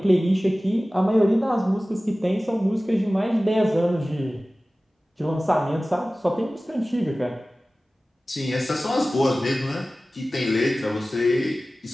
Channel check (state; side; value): normal; both; correlation 0.97